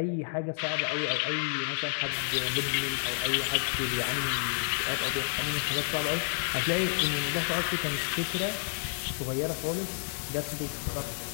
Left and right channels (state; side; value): silent; right; digital silence